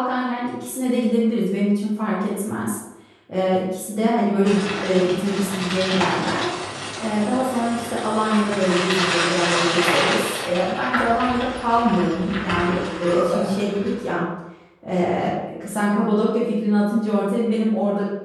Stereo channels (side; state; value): both; identical; correlation 1.00